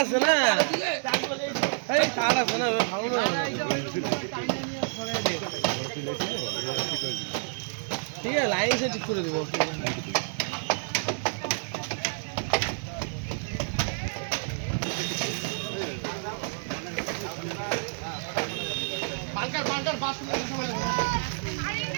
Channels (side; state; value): left; silent; digital silence